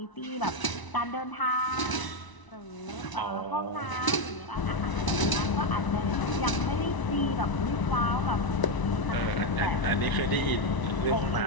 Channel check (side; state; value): right; late; 1.0 ms